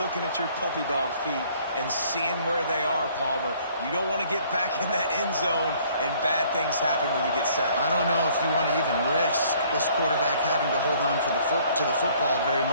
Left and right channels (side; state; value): both; inverted; correlation -0.59